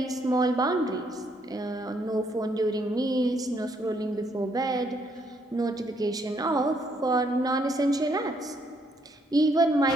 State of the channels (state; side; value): normal; both; correlation 0.72